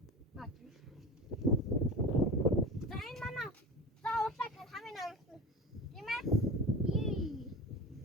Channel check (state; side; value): normal; both; correlation 0.30